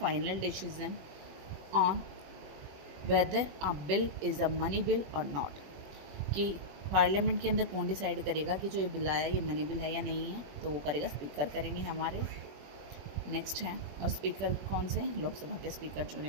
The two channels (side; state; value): left; late; 21 ms